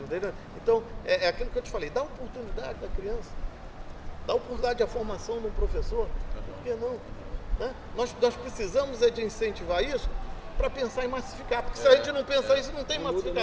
entendeu? Então, é aquilo que eu te falei, dá oportunidade da criança, dá oportunidade à formação de um professor, por que não? Né? Nós precisamos de incentivar isso para pensar em massificar, porque se a gente não pensar isso, não tem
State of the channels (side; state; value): both; identical; correlation 1.00